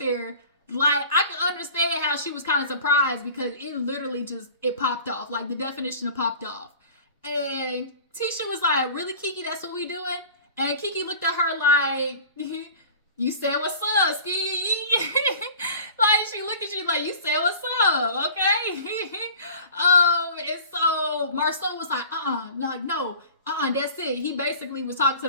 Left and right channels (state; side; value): inverted; both; correlation -0.43